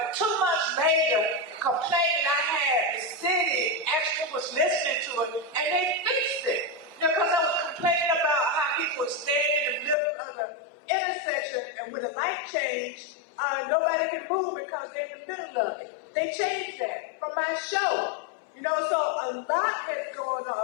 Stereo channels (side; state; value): right; drops out; at 10.0 s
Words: 2 months later, the complaint that I had, the city actually was listening to it, and they fixed it. Because I was complaining about how people would stand in the middle of the intersection, and when the light changed, nobody could move because they're in the middle of it. They changed that from my show. You know, so a lot has gone